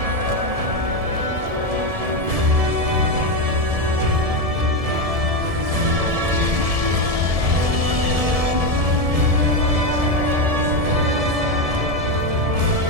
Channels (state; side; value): late; left; 1.7 ms